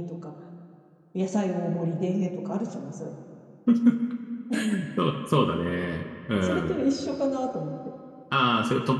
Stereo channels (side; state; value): both; identical; correlation 1.00